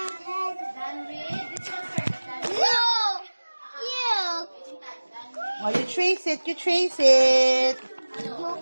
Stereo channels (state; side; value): inverted; both; correlation -1.00